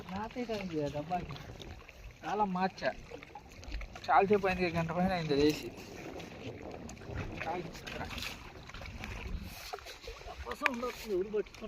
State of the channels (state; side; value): identical; both; correlation 1.00